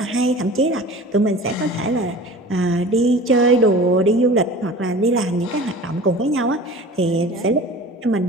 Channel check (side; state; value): both; normal; correlation 0.40